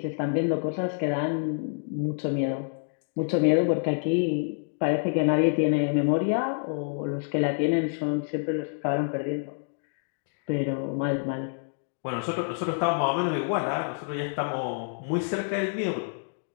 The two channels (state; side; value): silent; right; digital silence